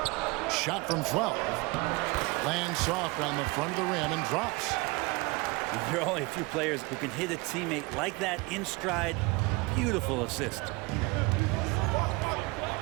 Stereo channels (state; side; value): quieter; left; 25.4 dB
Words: Shot from 12. Lands soft on the front of the rim and drops. There are only a few players who can hit a teammate like that in stride. Beautiful assist.